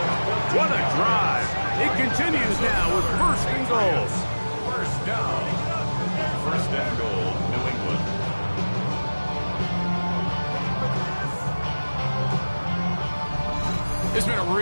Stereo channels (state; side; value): inverted; both; correlation -1.00